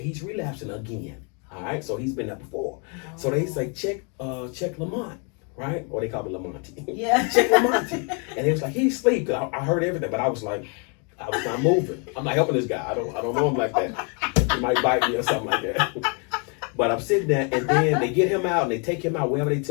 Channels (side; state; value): right; quieter; 36.5 dB